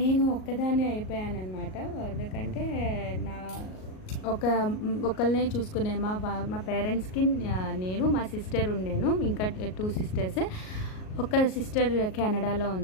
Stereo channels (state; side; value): late; right; 38 ms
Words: ఒక్కదాన్నే అయిపోయానమాట. ఎందుకంటే నా ఒకళ్ళనే చూసుకునే మా పేరెంట్స్కి నేను, మా సిస్టర్ ఉండేను, ఇంకా 2 సిస్టర్స్. ఒక సిస్టర్ కెనడాలో